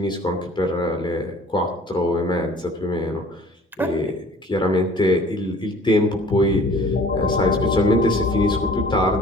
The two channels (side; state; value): both; normal; correlation 0.50